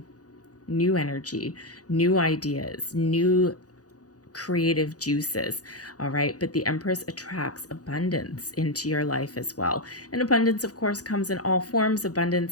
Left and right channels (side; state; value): right; late; 0.67 ms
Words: energy, new ideas, new creative juices. All right. But the Empress attracts abundance into your life as well. And abundance, of course, comes in all forms.